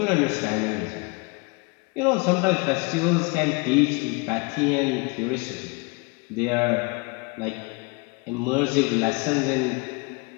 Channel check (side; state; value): right; quieter; 29.3 dB